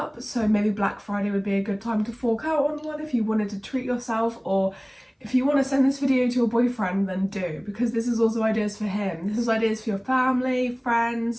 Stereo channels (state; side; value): identical; both; correlation 1.00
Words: so maybe Black Friday would be a good time to fork out on one if you wanted to treat yourself, or if you want to send this video to your boyfriend, then do, because this is also ideas for him. This is ideas for your family, friends,